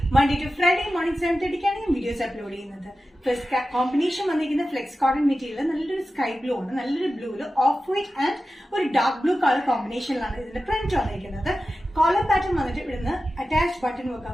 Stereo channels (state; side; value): normal; both; correlation 0.93